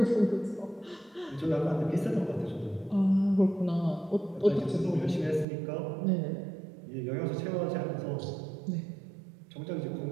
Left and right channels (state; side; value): drops out; left; at 5.5 s